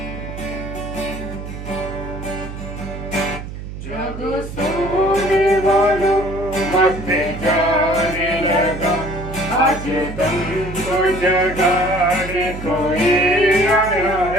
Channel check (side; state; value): right; noise; hum, 10 dB below the sound